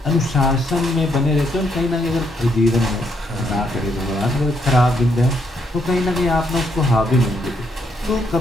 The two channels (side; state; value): both; normal; correlation 0.74